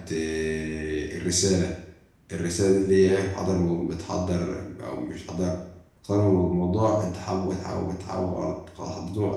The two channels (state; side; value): identical; both; correlation 1.00